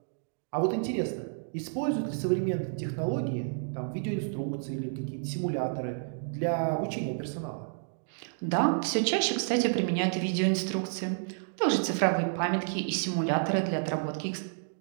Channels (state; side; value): silent; left; digital silence